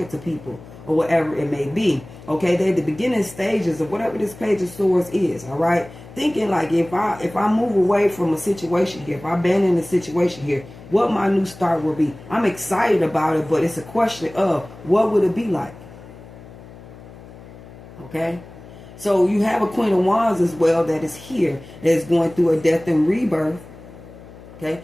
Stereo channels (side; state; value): left; noise; hum, 18 dB below the sound